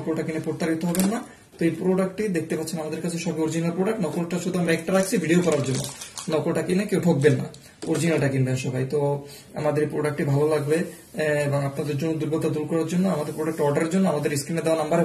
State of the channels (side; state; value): both; identical; correlation 1.00